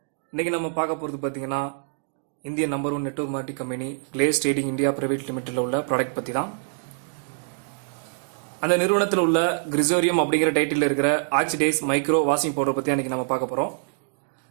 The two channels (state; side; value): silent; left; digital silence